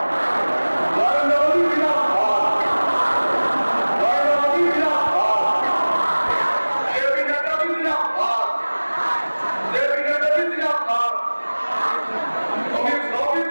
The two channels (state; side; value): inverted; both; correlation -1.00